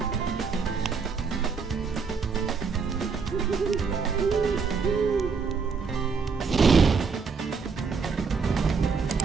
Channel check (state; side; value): quieter; left; 5.3 dB